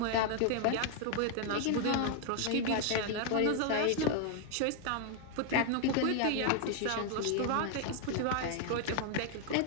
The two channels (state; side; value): different; both; correlation 0.00